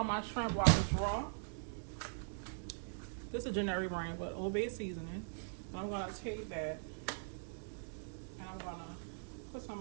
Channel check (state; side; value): silent; left; digital silence